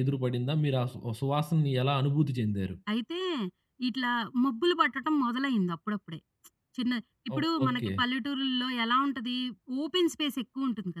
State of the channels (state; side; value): identical; both; correlation 1.00